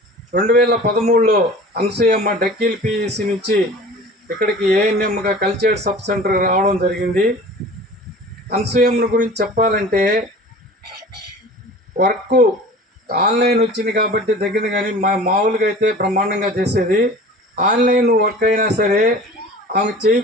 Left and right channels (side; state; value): both; normal; correlation 0.41